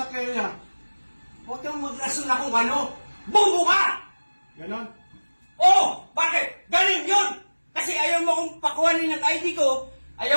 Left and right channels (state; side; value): inverted; both; correlation -1.00